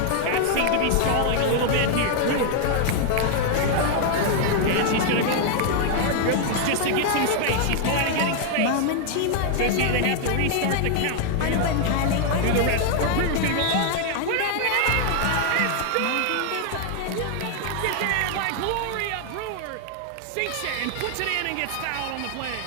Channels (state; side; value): different; both; correlation 0.00